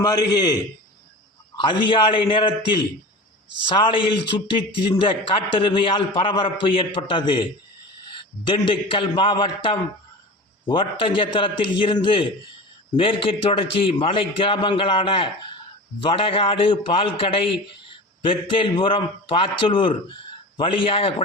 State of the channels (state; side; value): normal; both; correlation 0.33